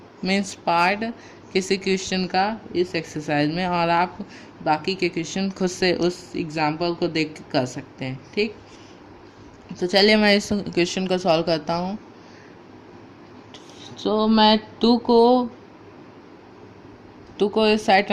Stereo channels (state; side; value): identical; both; correlation 1.00